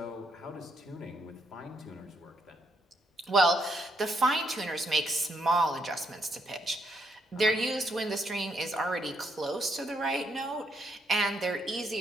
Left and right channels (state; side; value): normal; both; correlation 0.76